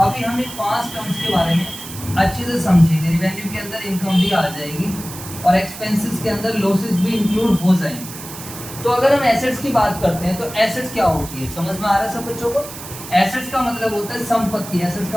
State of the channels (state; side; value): noise; right; hiss, 12 dB below the sound